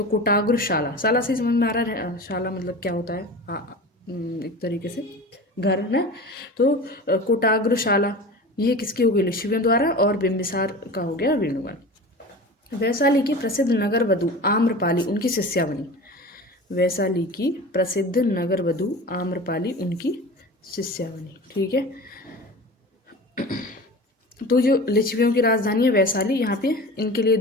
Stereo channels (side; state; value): both; normal; correlation 0.34